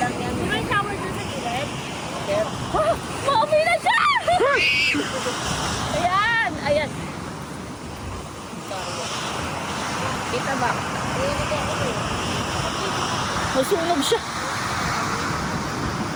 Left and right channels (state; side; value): identical; both; correlation 1.00